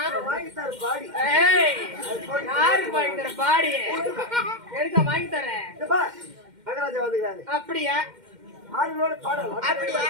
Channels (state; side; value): late; left; 2.1 ms